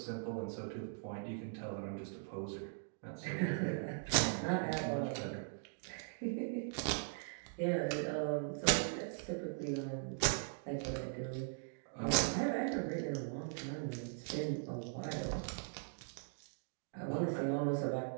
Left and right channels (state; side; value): silent; left; digital silence